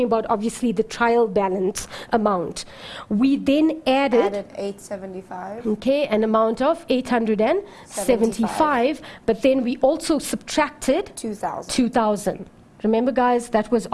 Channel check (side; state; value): both; identical; correlation 1.00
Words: about obviously the trial balance amount. We then added 875. Okay, an amount of 875, but then we also subtracted 2,000. Remember, guys, that was